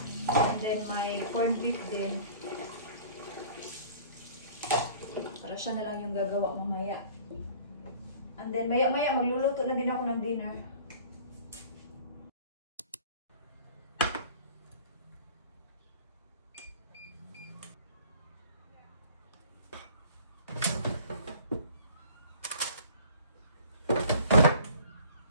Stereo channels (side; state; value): both; inverted; correlation -0.47